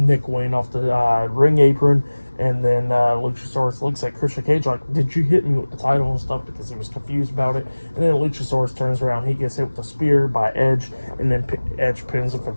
Wayne off the ring apron, and then Luchasaurus looks at Christian Cage like, did you hit me with the title and stuff, because he was confused about it. And then Luchasaurus turns around, he gets hit with a spear by Edge, and then Edge pins him for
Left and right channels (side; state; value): both; inverted; correlation -1.00